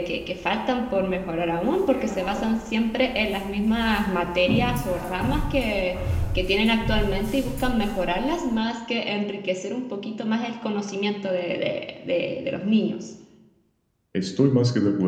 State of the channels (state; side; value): identical; both; correlation 1.00